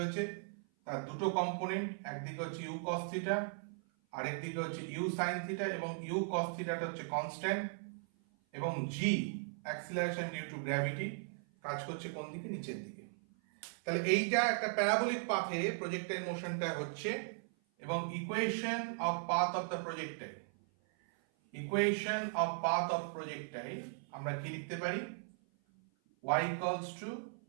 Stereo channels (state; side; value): silent; left; 53 dB below the other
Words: তার দুটো কম্পোনেন্ট, একদিকে হচ্ছে ইউ কস থিটা, আরেক দিকে হচ্ছে ইউ সাইন থিটা। এবং ইউ কস থিটাটা হচ্ছে কনস্ট্যান্ট এবং জি অ্যাক্সিলারেশন ডিউ টু গ্র্যাভিটি কাজ করছে কোন দিকে, নিচের দিকে। তাহলে এইটা একটা প্যারাবোলিক পাথে প্রজেক্টাইল মোশনটা হচ্ছে। এবং equation of path of the projectile, equation of path of projectile আমরা কি লিখতে পারি? y equals to